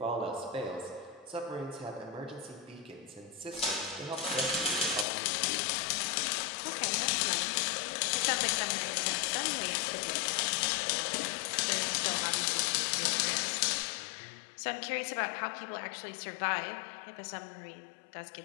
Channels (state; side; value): drops out; right; at 5.1 s